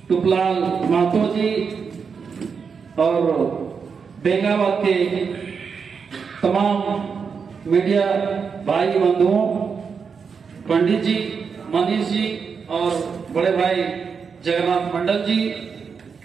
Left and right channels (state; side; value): quieter; left; 5.9 dB